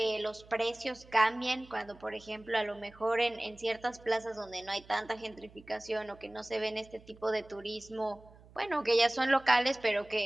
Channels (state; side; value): noise; right; hum, 23 dB below the sound